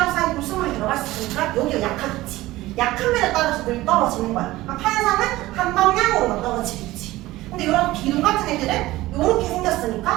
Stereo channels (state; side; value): quieter; left; 17.6 dB